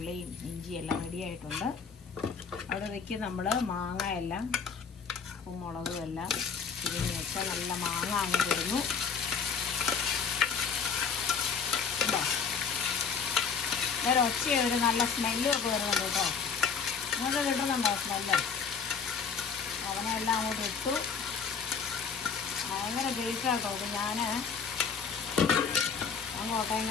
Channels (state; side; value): quieter; right; 6.0 dB